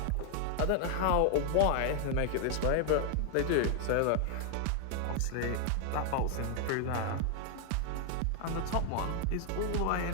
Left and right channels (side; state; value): both; different; correlation 0.00